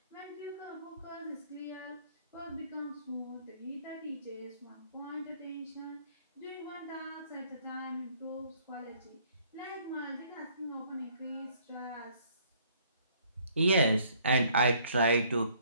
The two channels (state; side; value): inverted; both; correlation -0.61